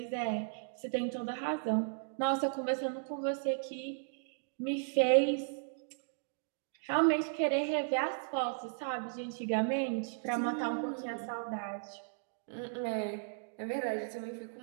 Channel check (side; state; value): left; silent; digital silence